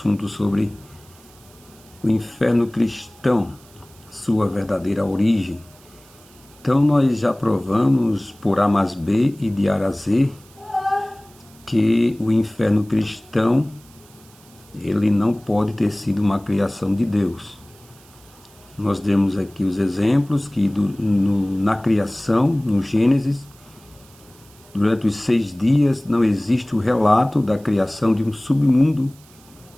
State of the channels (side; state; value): right; noise; hiss, 26 dB below the sound